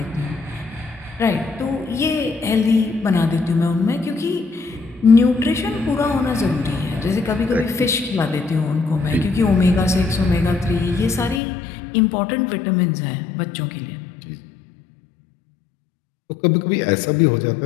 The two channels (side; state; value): right; drops out; at 11.4 s